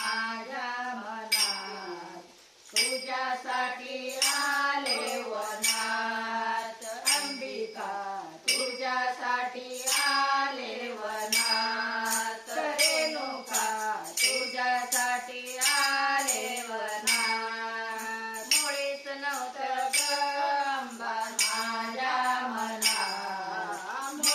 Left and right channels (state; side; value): identical; both; correlation 1.00